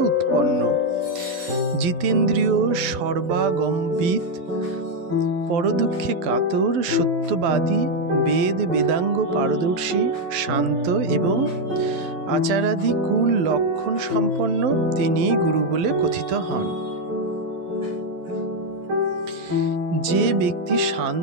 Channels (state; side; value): late; left; 11 ms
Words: উৎপন্ন, জিতেন্দ্রীয়, সর্বাগমবিদ, পরদুঃখে কাতর, সত্যবাদী, বেদ বেদাঙ্গ পারদর্শী, শান্ত এবং আচারাদি কুল লক্ষণ সম্পন্ন তিনি গুরু বলে কথিত হন। যে ব্যক্তি